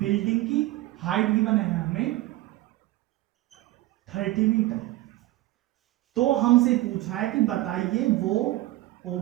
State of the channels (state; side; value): quieter; left; 17.1 dB